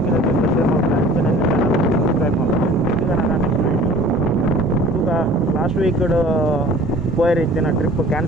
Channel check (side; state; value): both; normal; correlation 0.47